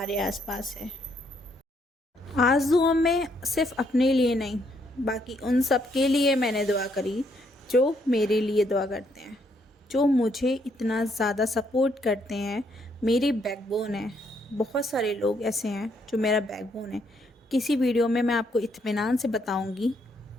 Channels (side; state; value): both; normal; correlation 0.72